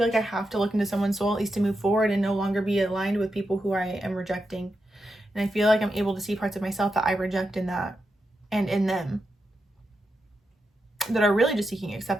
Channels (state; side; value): normal; both; correlation 0.87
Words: like I have to look into someone's soul at least to move forward and no longer be aligned with people who I am rejecting. And I feel like I'm able to see parts of myself that I reject in that and in them that are really just seeking